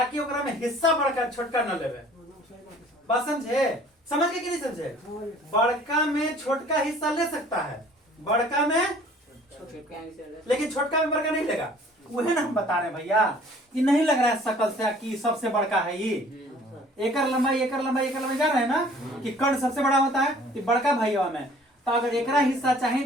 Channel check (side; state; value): both; normal; correlation 0.53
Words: ओकरा में हिस्सा बड़का छोटका न लेवे। बात समझे? समझ के कि नहीं समझे? बड़का में छोटका हिस्सा ले सकता है, बड़का में, लेकिन छोटका में बड़का नहीं लेगा। वही ना हम बता रहे हैं भैया, ये नहीं लग रहा है शकल से कि सबसे बड़का है ये। एकर लंबाई जा रहे हैं ना कि कर्ण सबसे बड़ा होता है, कि बड़का भैया में। तो अगर एकरा हिस्सा चाहे